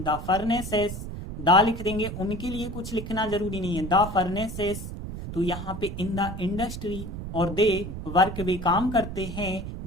फर्नेसेस, दा लिख देंगे, उनके लिए कुछ लिखना जरूरी नहीं है, द फर्नेसेस। तो यहाँ पे इन द इंडस्ट्री और दे वर्क वे काम करते हैं,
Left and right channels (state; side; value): noise; right; rumble, 8 dB below the sound